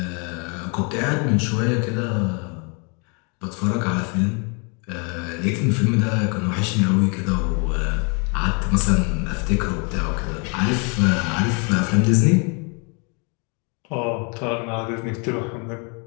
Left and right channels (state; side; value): quieter; right; 34.8 dB